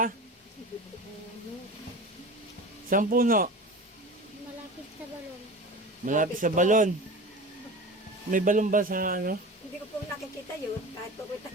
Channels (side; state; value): both; normal; correlation 0.33